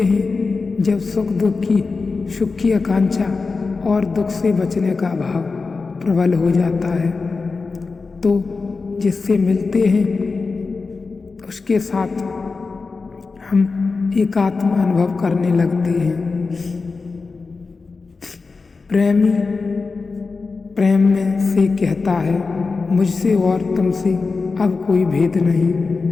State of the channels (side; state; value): right; quieter; 4.3 dB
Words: जब सुख की आकांक्षा और दुख से बचने का भाव प्रबल हो जाता है, तो जिससे मिलते हैं उसके साथ हम एकात्म अनुभव करने लगते हैं। प्रेमी प्रेम में से कहता है, मुझसे और तुमसे अब कोई भेद नहीं,